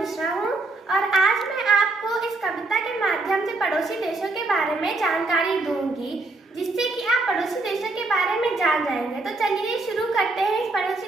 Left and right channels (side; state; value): left; quieter; 3.1 dB